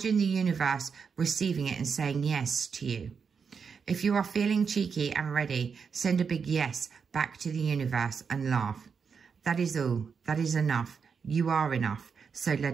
the universe receiving it and saying yes to you. If you are feeling cheeky and ready, send a big yes back to the universe and laugh. That is all. That is enough. You are enough. So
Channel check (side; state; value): left; quieter; 6.0 dB